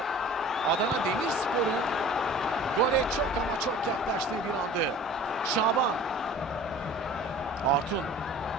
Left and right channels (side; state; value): both; normal; correlation 0.44